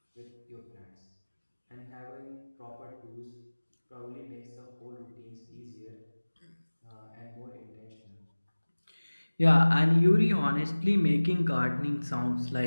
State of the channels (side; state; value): both; inverted; correlation -1.00